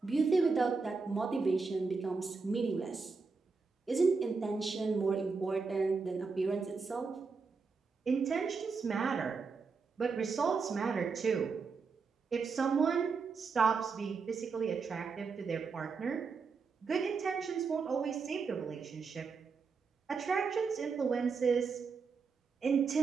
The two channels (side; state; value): left; quieter; 4.8 dB